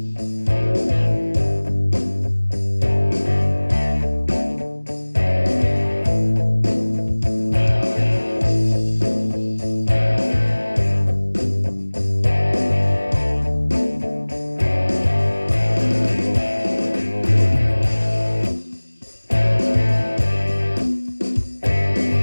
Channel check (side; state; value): both; inverted; correlation -1.00